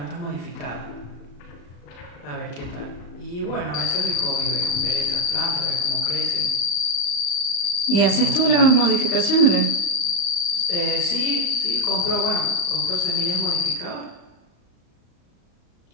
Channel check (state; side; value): late; right; 35 ms